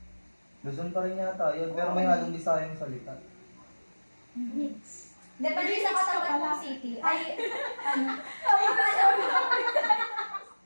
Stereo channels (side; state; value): both; inverted; correlation -1.00